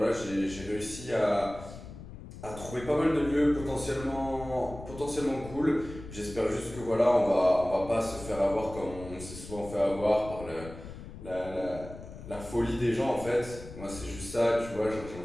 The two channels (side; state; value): left; noise; rumble, 13 dB below the sound